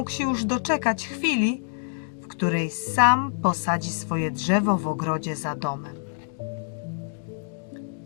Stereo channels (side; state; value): right; silent; digital silence